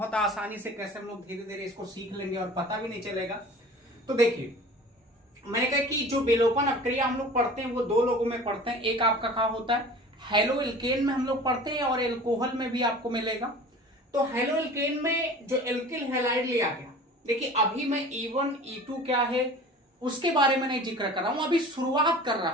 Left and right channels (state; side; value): normal; both; correlation 0.41